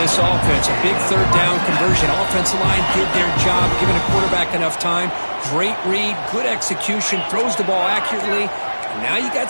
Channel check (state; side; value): inverted; both; correlation -1.00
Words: offense. A big 3rd down conversion. Offensive line did their job, giving a quarterback enough time. Great read, good execution, throws the ball accurately. And now you got